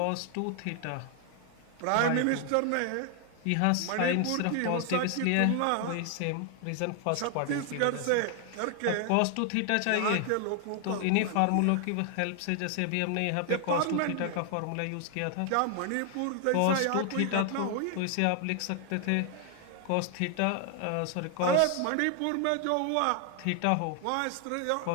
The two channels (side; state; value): both; different; correlation 0.00